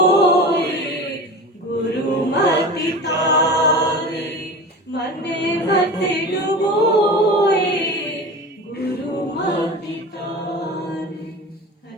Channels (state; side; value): normal; both; correlation 0.33